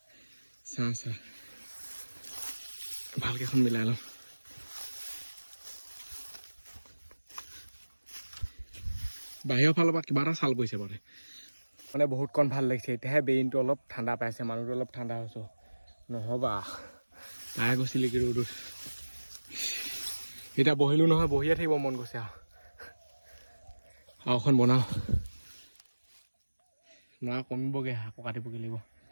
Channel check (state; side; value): inverted; both; correlation -1.00